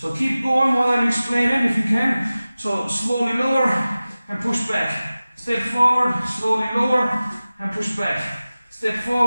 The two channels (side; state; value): both; inverted; correlation -0.97